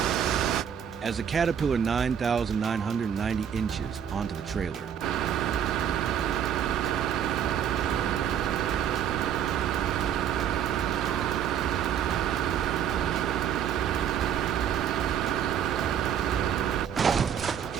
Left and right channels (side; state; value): left; quieter; 8.9 dB